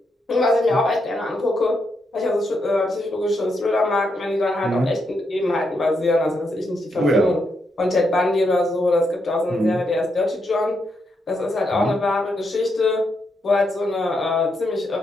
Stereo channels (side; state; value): both; normal; correlation 0.80